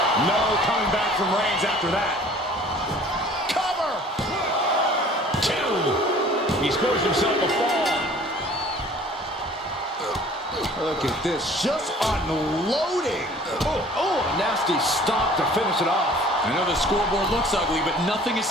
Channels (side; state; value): both; normal; correlation 0.50